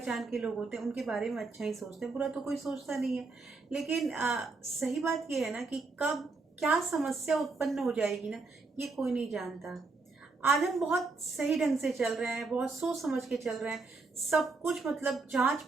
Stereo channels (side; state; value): left; quieter; 3.9 dB